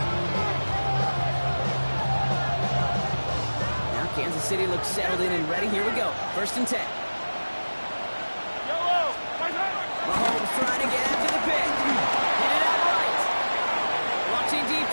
Now Kansas City looks settled in and ready. Here we go. 1st and 10. Mahomes trying to get after the pick. Hit it out right. Watching deep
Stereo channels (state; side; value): inverted; both; correlation -1.00